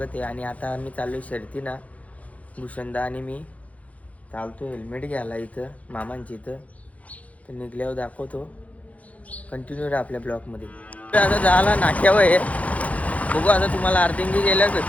आहे. आणि आता आम्ही चाललो शर्तीना. भूषणदा आणि मी चालतो हेल्मेट घ्यायला इथं मामांची इथं. तर निघल्यावर दाखवतो. कंटिन्यू राहा आपल्या ब्लॉगमध्ये. आता झाला नाक्यावर आहे. बघू आता तुम्हाला अर्धिंगी गेल्यावर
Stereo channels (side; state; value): right; late; 0.068 ms